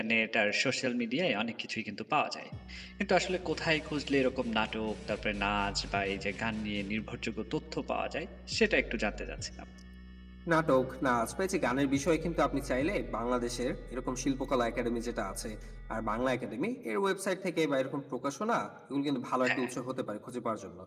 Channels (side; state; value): both; identical; correlation 1.00